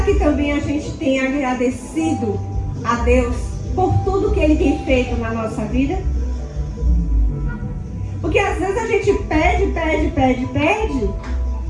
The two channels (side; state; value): both; identical; correlation 1.00